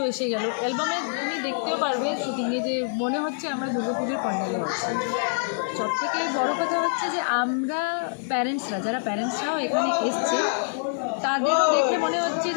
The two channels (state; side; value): silent; right; digital silence